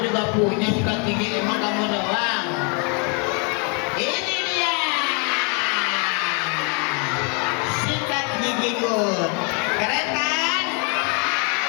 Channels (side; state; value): right; quieter; 35.6 dB